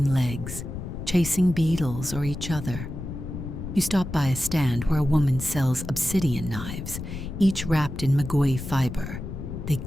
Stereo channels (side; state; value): left; noise; rumble, 8 dB below the sound